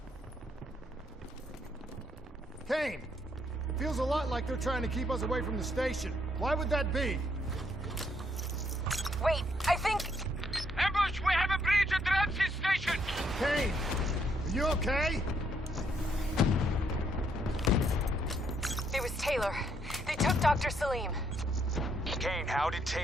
Kane! Feels a lot like they're trying to keep us away from the station. Why would that be? Wait, I think... Ambush! We have a breach at Ramses Station! Kane! Are you okay? It was Taylor. They took Dr. Salim. Kane, how did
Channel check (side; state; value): both; normal; correlation 0.72